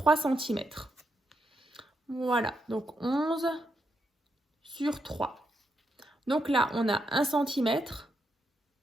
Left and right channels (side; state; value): both; normal; correlation 0.82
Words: cm. Voilà, donc 11 sur 3. Donc là, on a 1 cm,